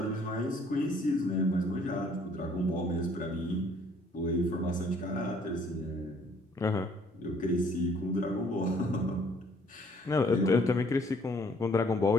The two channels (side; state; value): both; normal; correlation 0.61